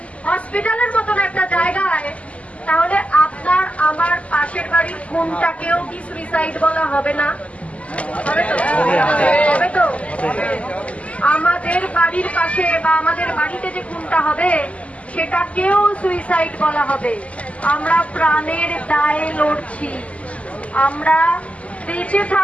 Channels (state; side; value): late; right; 0.065 ms